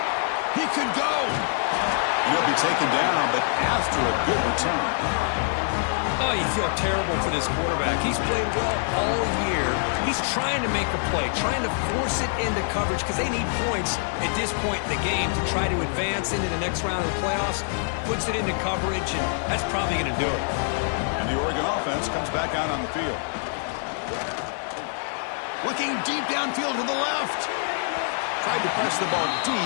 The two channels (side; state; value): right; silent; digital silence